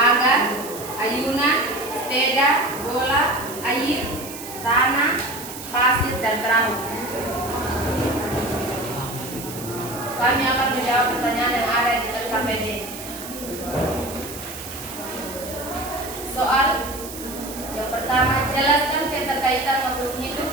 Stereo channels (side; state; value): right; noise; hiss, 12 dB below the sound